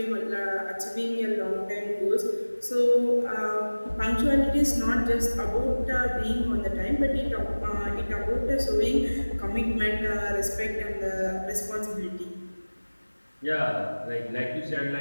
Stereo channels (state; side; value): inverted; both; correlation -1.00